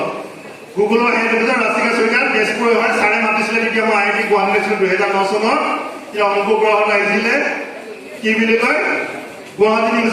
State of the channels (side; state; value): both; identical; correlation 1.00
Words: গুগলৰ হেড অফিচত ৰাষ্ট্ৰীয় চৰকাৰ তেজপুৰ হয়, ছাৰে মাতিছিলে তেতিয়া মই IIT গুৱাহাটী আছিলোঁ 2009 চনত। এতিয়া অংক গ্ৰহত আহিছিলে কি বুলি কয় গুৱাহাটী